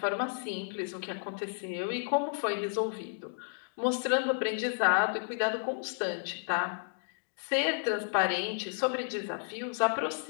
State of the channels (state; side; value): silent; right; digital silence